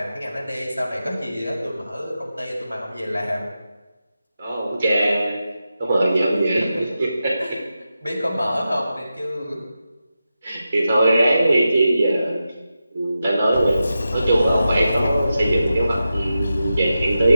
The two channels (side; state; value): both; inverted; correlation -0.90